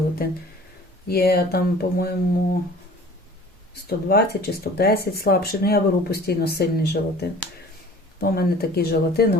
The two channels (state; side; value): normal; both; correlation 0.46